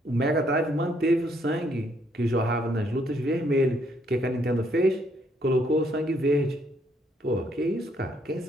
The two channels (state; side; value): normal; both; correlation 0.70